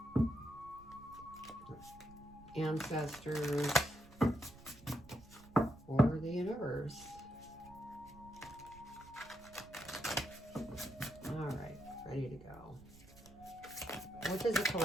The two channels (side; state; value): right; noise; rumble, 21 dB below the sound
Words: ancestors, or the universe. All right, ready to go. What does the